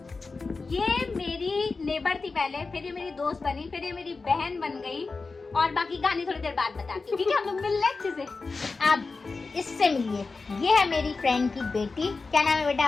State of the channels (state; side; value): quieter; right; 4.1 dB